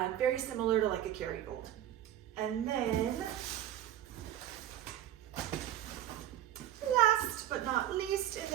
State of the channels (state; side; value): quieter; left; 12.2 dB